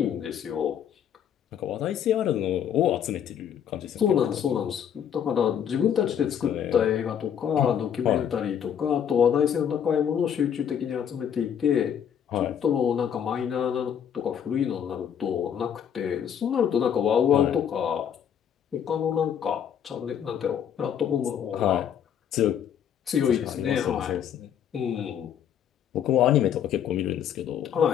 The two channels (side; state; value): right; quieter; 8.8 dB